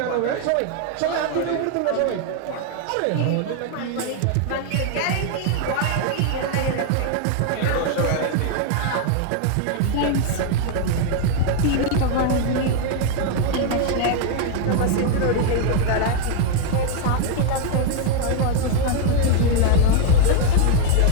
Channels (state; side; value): different; both; correlation 0.00